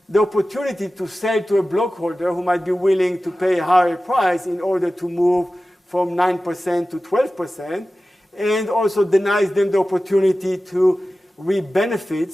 the opportunity to sell to a blockholder who might be willing to pay a higher price in order to move from 9% to 12%, and also denies them the opportunity to reap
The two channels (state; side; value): normal; both; correlation 0.95